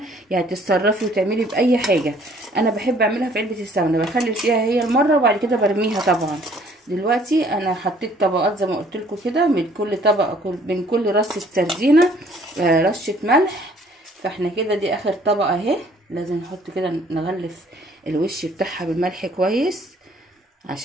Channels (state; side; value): normal; both; correlation 0.59